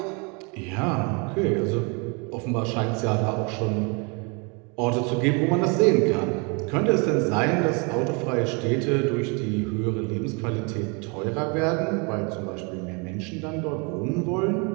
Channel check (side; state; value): left; quieter; 32.3 dB